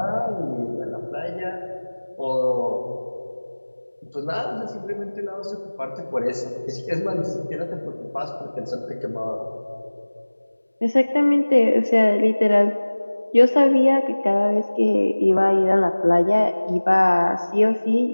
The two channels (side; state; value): both; inverted; correlation -1.00